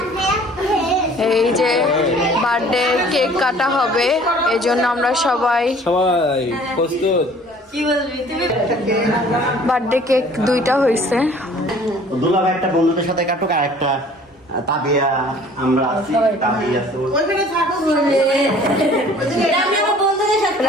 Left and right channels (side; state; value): both; normal; correlation 0.52